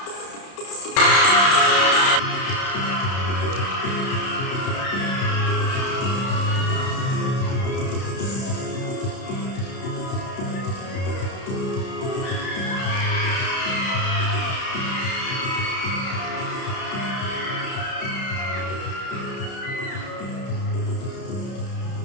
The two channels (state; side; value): late; right; 31 ms